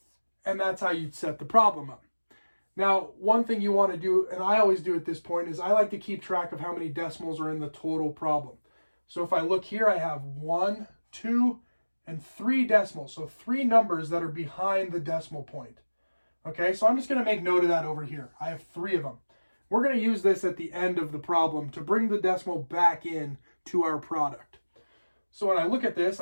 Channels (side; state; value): both; inverted; correlation -1.00